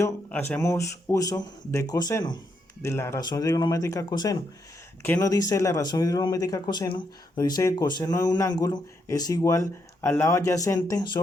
hacemos uso de coseno, de la razón trigonométrica coseno. ¿Qué nos dice la razón trigonométrica coseno? Nos dice que coseno de un ángulo es igual al lado adyacente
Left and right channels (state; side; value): normal; both; correlation 0.79